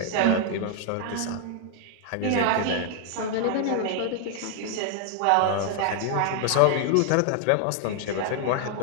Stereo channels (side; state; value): both; different; correlation 0.00